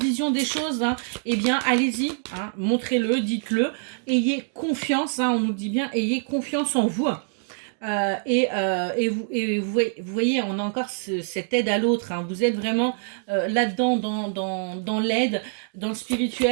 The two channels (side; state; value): left; silent; digital silence